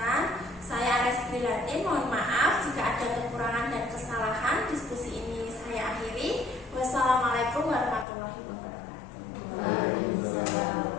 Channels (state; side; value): drops out; right; at 8.1 s